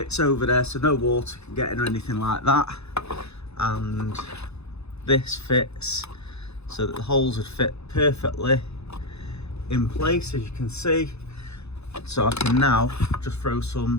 over there so no water can get in or anything like that. And this fits so that the holes would fit perfectly in place, as you can see. So I can now just throw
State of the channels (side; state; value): right; late; 0.80 ms